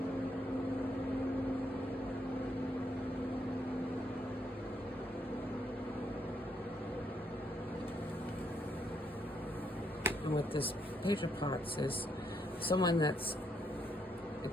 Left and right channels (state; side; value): normal; both; correlation 0.75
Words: And with this Page of Pots is someone that's